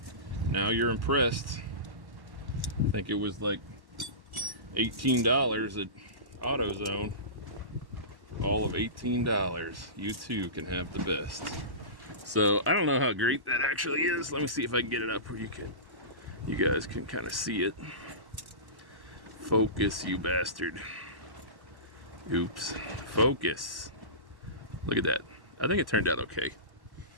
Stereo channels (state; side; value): late; left; 1.1 ms